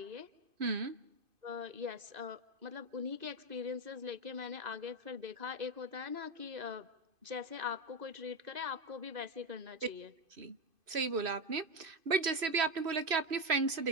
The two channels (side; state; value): left; late; 3.1 ms